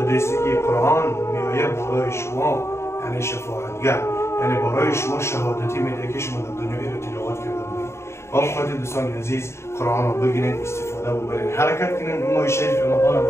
که قرآن میآید برای شما یعنی شفاعتگر، یعنی برای شما شهادتی میده که شما در دنیا رو تلاوت کرده بودید. با اون خاطر دوستان عزیز قرآن را بگیرید، استفاده ببرید، حرکت کنید. ماه شریف رمضان با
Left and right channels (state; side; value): late; right; 0.13 ms